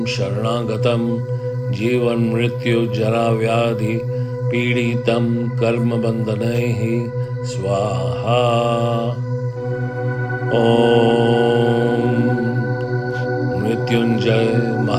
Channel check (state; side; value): identical; both; correlation 1.00